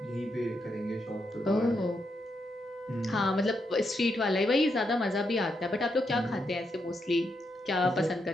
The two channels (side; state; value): both; normal; correlation 0.81